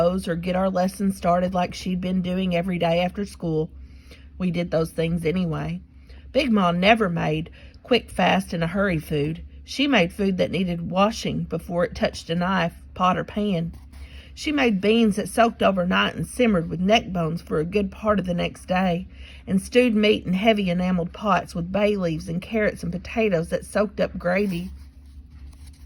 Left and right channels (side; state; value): both; identical; correlation 1.00